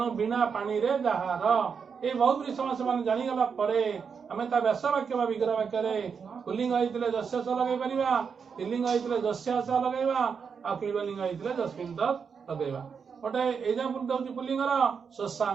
बिना पानी रे जहार ये बहुब्री समास मान जानीगला आम व्यास वाक्य विग्रह वाक्य पुलिंग होते जस्य स लगे पार स्त्रीलिंग होते जस्यास लगे क्लीबलिंग होते जस्मिन तत् लगे। गोटे एग्जांपल दौर पुलिंगर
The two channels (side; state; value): left; quieter; 6.2 dB